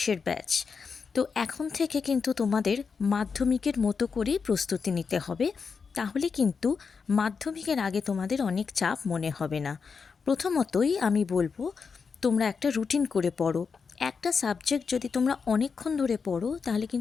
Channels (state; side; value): quieter; right; 5.5 dB